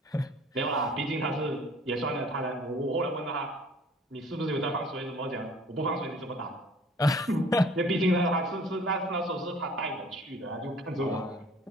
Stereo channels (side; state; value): both; normal; correlation 0.51